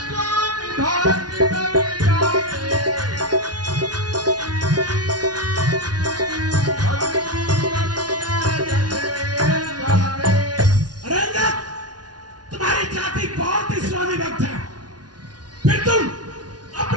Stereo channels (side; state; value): left; late; 0.69 ms